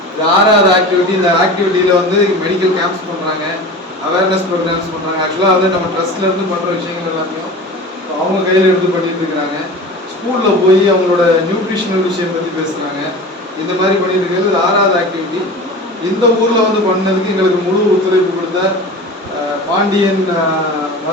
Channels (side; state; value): both; normal; correlation 0.34